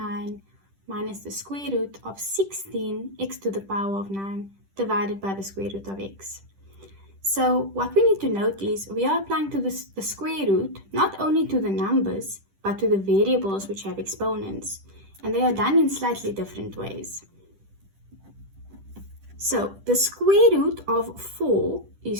minus the square root of 16x to the power of 9 divided by the square root of x. So what we need to note is we are applying to the square root not only to the numbers but to the variables which have exponents, and they are done in slightly different ways. So the square root of 4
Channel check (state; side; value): late; left; 10 ms